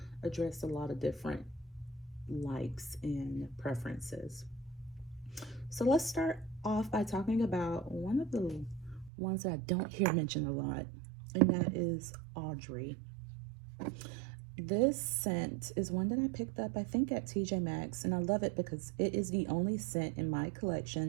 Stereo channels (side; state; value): left; drops out; at 9.1 s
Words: address a lot of different likes and preferences. So let's start off by talking about one of the ones that I don't hear mentioned a lot, and that is Audrey. This scent is one that I picked up, I think, at TJ Maxx, and I love it because it is the only scent in my